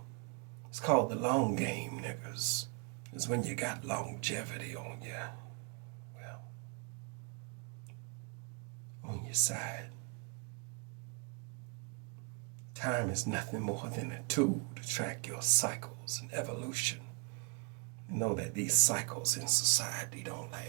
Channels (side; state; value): left; quieter; 36.0 dB